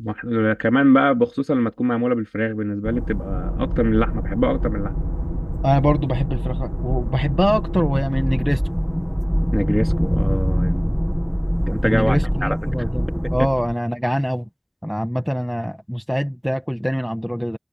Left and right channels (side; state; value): both; identical; correlation 1.00